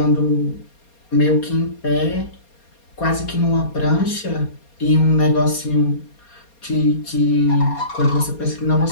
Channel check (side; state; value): right; late; 4.3 ms